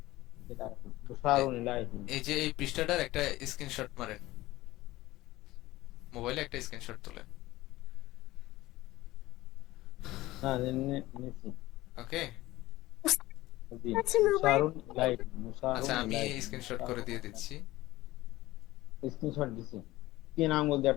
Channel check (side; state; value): right; quieter; 17.6 dB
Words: এ- মুশারুন ইলাইহি। এই যে এই পৃষ্ঠাটার একটা স্ক্রিনশট মারেন, মোবাইলে একটা স্ক্রিনশট তুলেন। না, নিছি। ওকে। জি, আছে মোবাইল, মুশারুন ইলাইহি, মুশারুন আচ্ছা, আমি ইলাইহি, স্ক্রিনশট করে দিয়ে দিচ্ছি। স্ক্রিনশট দিছি। কি নাম বলতে